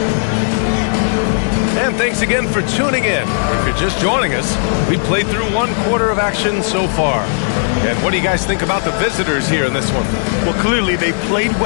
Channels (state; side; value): silent; right; digital silence